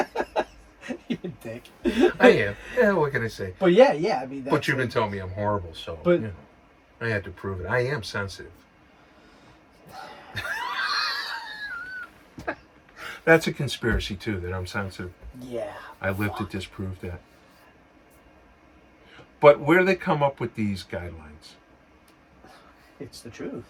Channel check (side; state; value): both; identical; correlation 1.00